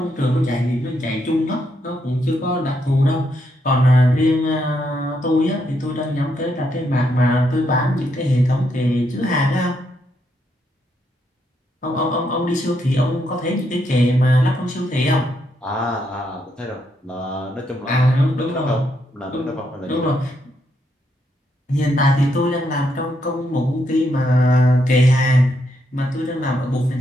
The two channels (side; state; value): both; normal; correlation 0.78